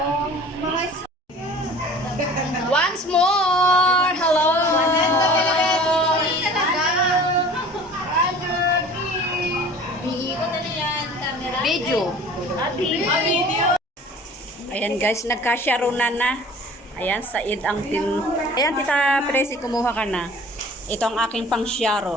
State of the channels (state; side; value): normal; both; correlation 0.45